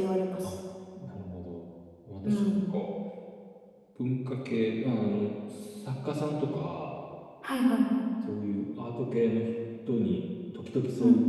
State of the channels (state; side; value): identical; both; correlation 1.00